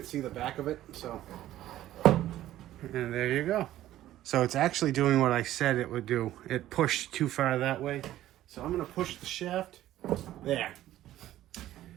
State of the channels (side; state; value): left; quieter; 13.7 dB